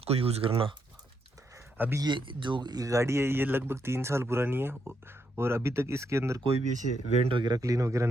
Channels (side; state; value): both; normal; correlation 0.79